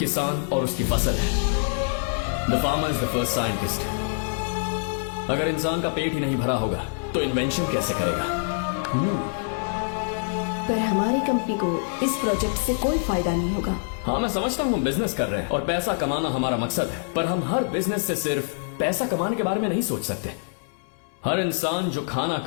और उसकी फसल है। The farmer is the first scientist. अगर इंसान का पेट ही नहीं भरा होगा तो इन्वेंशन कैसे करेगा? पर हमारी कंपनी को इस प्रोजेक्ट से कोई फायदा नहीं होगा। हाँ, मैं समझता हूँ हम बिजनेस कर रहे हैं और पैसा कमाना हमारा मकसद है, पर हम हर बिजनेस से सिर्फ पैसा कमाने के बारे में नहीं सोच सकते। हर इंसान जो खाना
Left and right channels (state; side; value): silent; right; 60 dB below the other